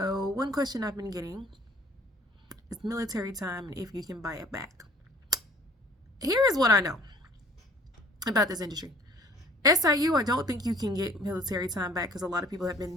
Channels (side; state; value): both; normal; correlation 0.53